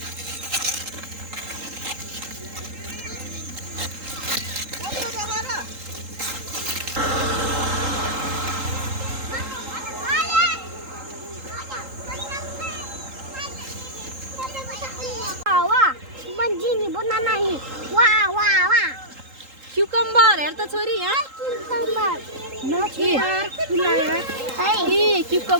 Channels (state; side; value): late; left; 3.8 ms